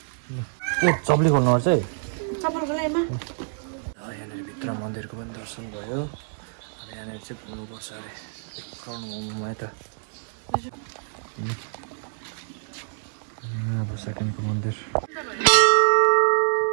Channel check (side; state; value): left; silent; digital silence